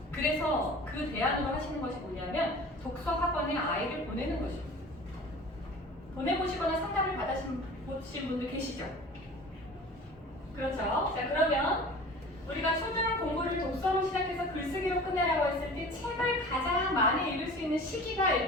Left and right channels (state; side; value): normal; both; correlation 0.40